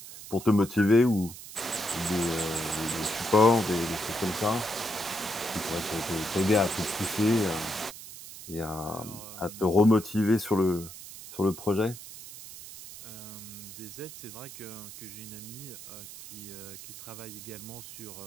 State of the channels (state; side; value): noise; right; hiss, 14 dB below the sound